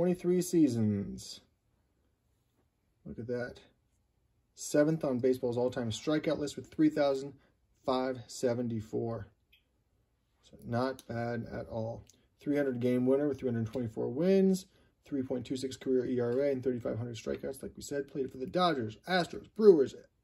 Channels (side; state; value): both; identical; correlation 1.00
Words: seasons. Look at that. 7th on baseball's all-time strikeout list with 3,574. So not bad at all. 300 game winner with 324 wins, 3.26 career ERA, and 3,500 strikeouts. Like we said, played for the Dodgers, Astros, Brewers,